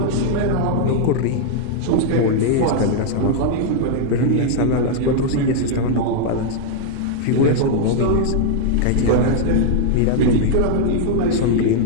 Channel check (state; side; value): different; both; correlation -0.01